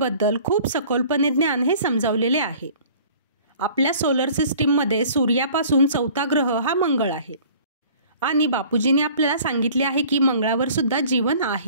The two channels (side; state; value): both; inverted; correlation -0.49